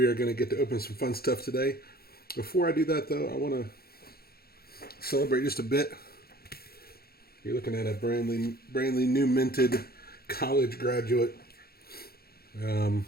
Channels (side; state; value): right; late; 0.45 ms